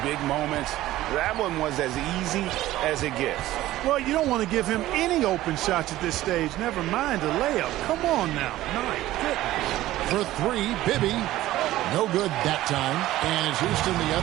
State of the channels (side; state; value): left; quieter; 15.4 dB